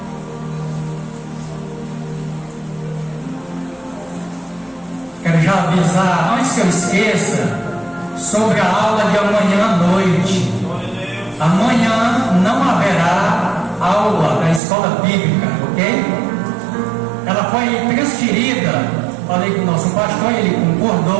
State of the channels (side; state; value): left; drops out; at 14.6 s